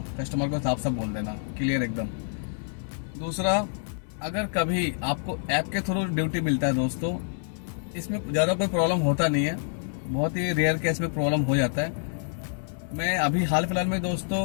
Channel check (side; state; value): right; silent; digital silence